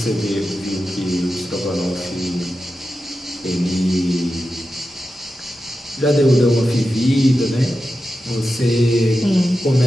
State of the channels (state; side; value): normal; both; correlation 0.91